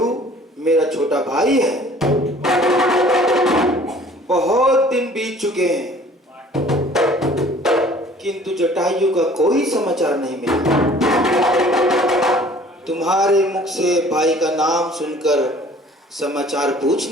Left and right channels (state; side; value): normal; both; correlation 0.52